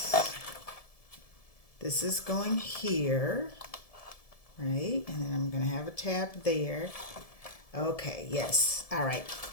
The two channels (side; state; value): right; late; 1.7 ms